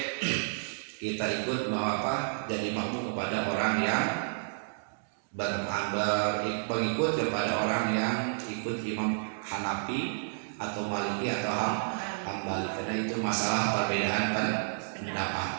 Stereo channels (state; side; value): silent; left; digital silence